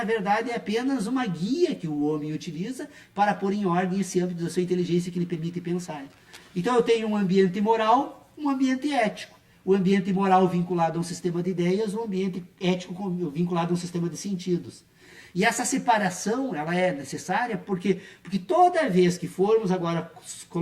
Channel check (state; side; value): identical; both; correlation 1.00